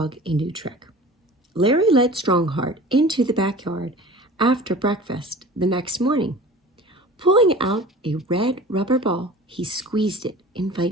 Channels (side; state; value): both; normal; correlation 0.41